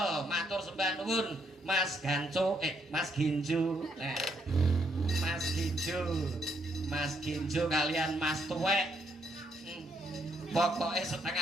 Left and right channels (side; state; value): both; normal; correlation 0.73